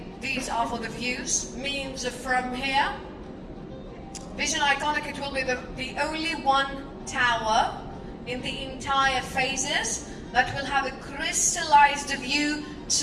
these are for the views, means from here. Vision Iconic, it will be the only one tower in the entire phases that will have a crystallized view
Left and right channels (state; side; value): identical; both; correlation 1.00